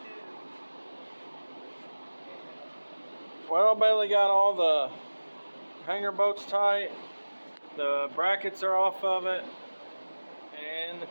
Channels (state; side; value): inverted; both; correlation -1.00